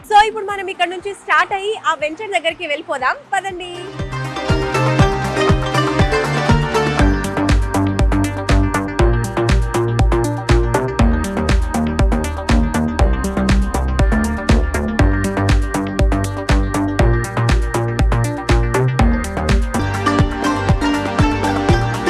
సో ఇప్పుడు మనం ఇక్కడ నుంచి స్టార్ట్ అయ్యి ఆ వెంచర్ దగ్గరికి వెళ్ళిపోదాం, పదండి.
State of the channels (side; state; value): both; identical; correlation 1.00